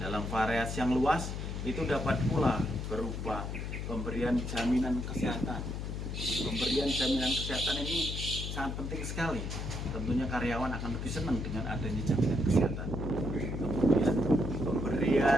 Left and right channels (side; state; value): left; noise; hum, 4 dB below the sound